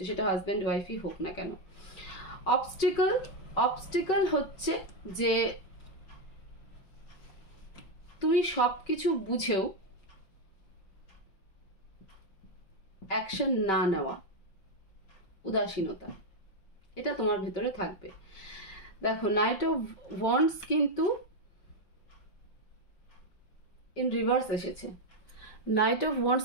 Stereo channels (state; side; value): late; right; 5.7 ms